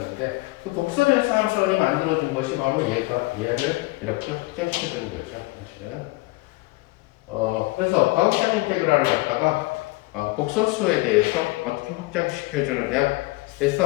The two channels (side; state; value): right; quieter; 22.1 dB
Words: 그 복소변수 함수론이 만들어준 것이 바로 얘를 이렇게 확장시켜주는 거죠. 사실은 그래서 가우시안 인테그랄을 갖다가 복소수에 대해서 어떻게 확장시켜주느냐